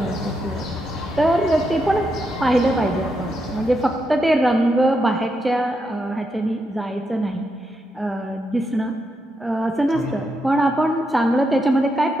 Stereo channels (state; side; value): normal; both; correlation 0.83